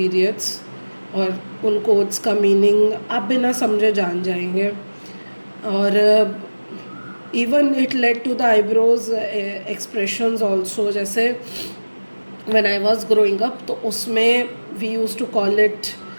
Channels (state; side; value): inverted; both; correlation -1.00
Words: और उन codes का meaning आप बिना समझे जान जाएंगे. और even it led to the eyebrows expressions also. जैसे when I was growing up तो उसमें we used to call it